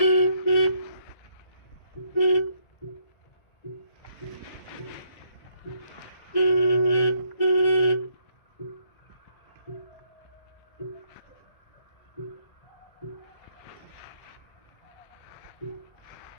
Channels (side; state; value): right; late; 1.7 ms